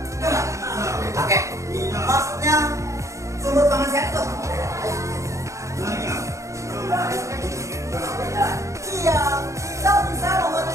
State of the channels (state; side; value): late; left; 0.15 ms